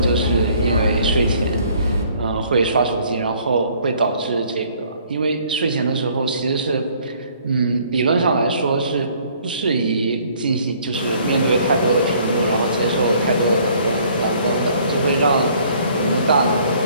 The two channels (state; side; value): inverted; both; correlation -0.60